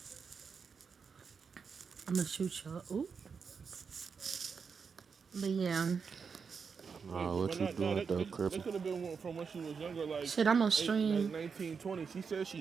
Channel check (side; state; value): left; quieter; 5.8 dB